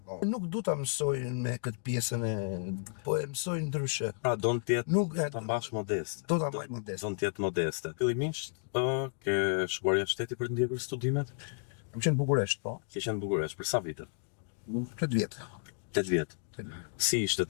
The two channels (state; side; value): silent; right; digital silence